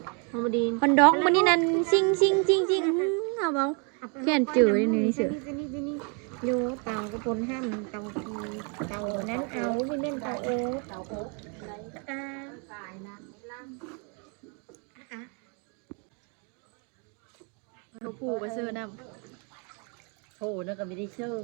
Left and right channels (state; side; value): quieter; left; 36.0 dB